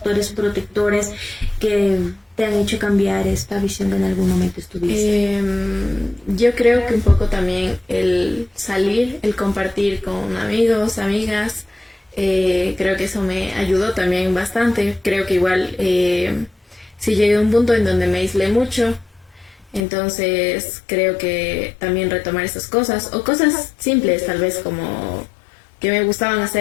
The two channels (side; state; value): right; drops out; at 19.8 s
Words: protectores que te han hecho cambiar esta visión que en algún momento estuviste? Yo creo que un poco también el salir, el compartir con amigos, amigas, creo que eso me ayudó también bastante. Creo que igual sí llegué a un punto en donde me aislé mucho. Entonces creo que también retomar esas cosas, o cosas simples tal vez como que me gustaban